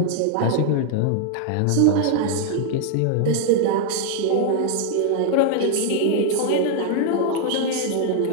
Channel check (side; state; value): both; different; correlation 0.00